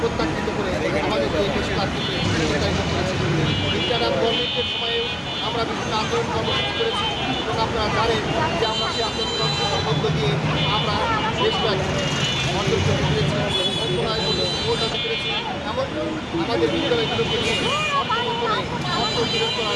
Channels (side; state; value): both; identical; correlation 1.00